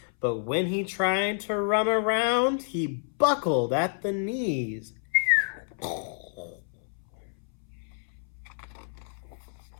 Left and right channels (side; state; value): right; silent; 59 dB below the other